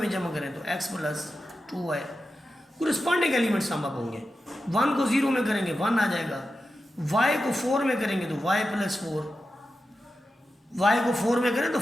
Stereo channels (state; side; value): normal; both; correlation 0.91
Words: जमा करें तो x + 2y। Corresponding element sum up होंगे। 1 को 0 में करेंगे 1 आ जाएगा, y को 4 में करेंगे तो y + 4, y को 4 में करें तो